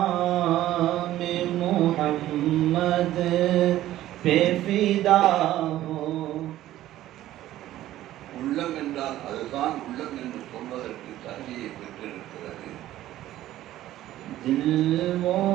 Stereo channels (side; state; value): left; quieter; 14.1 dB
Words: मोहम्मद पे फिदा हो. உள்ளம் என்றால் அதுதான் உள்ளம் என்று சொல்வதற்கு தகுதியை பெற்றிருக்கிறது. दिल वो